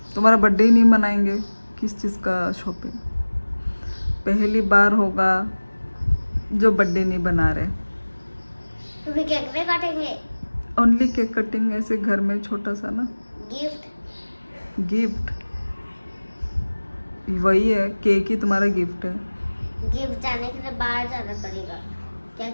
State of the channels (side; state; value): both; inverted; correlation -1.00